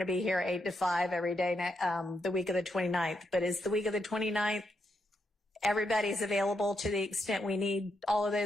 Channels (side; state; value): both; normal; correlation 0.81